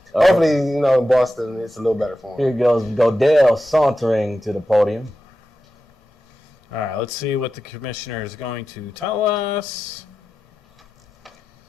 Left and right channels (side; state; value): both; normal; correlation 0.91